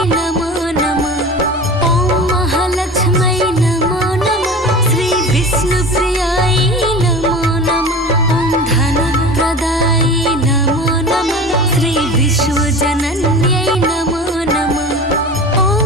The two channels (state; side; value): normal; both; correlation 0.34